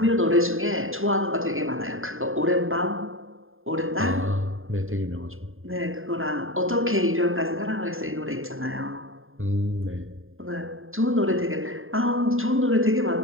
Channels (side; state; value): left; late; 0.60 ms